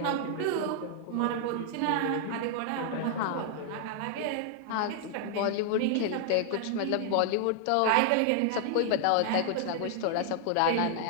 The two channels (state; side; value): different; both; correlation 0.00